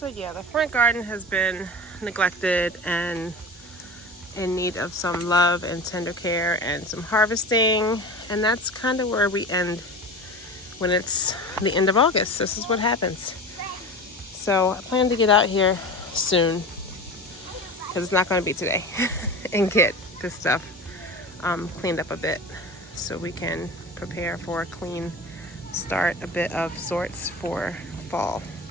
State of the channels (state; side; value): normal; both; correlation 0.32